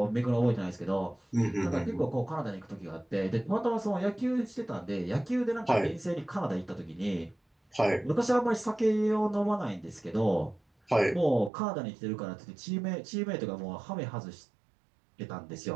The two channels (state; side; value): drops out; left; at 11.5 s